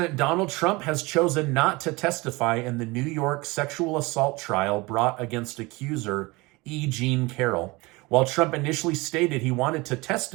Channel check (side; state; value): left; quieter; 23.8 dB